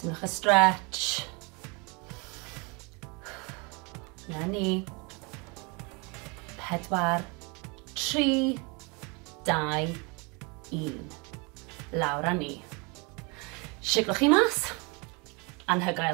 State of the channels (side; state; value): left; quieter; 30.3 dB